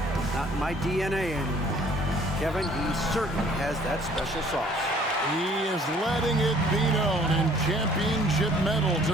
not in my DNA anymore. Kevin, he certainly has that special sauce. He is letting it be known, and championship medal to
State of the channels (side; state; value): both; normal; correlation 0.57